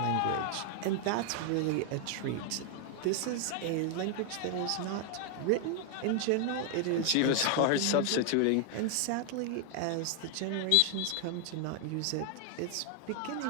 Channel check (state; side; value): different; both; correlation 0.00